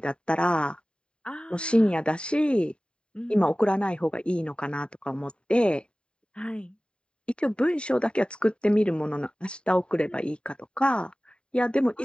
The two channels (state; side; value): late; right; 0.052 ms